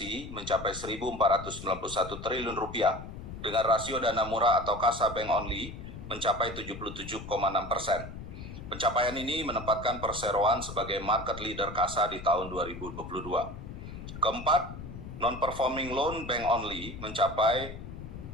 mencapai 1.491 triliun rupiah dengan rasio dana murah atau kasa bank only mencapai 77,6%. Pencapaian ini menempatkan perseroan sebagai market leader kasa di tahun 2022. Keempat, non-performing loan bank only mencapai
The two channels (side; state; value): left; noise; rumble, 11 dB below the sound